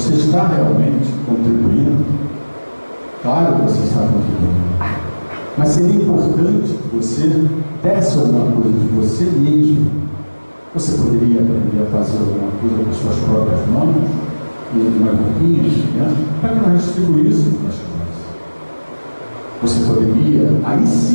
está realmente contribuindo? Claro que você está contribuindo. Mas seria importante que você desse alguma coisa de você mesmo. Você poderia aprender a fazer alguma coisa com as suas próprias mãos, e umas roupinhas, né? Para que nós distribuíssemos para as crianças. Você poderia,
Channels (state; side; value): inverted; both; correlation -1.00